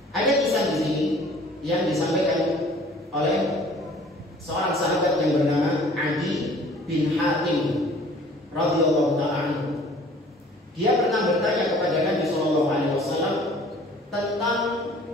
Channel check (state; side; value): normal; both; correlation 0.52